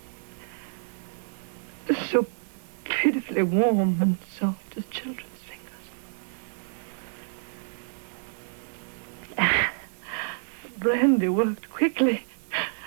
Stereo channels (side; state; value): left; silent; digital silence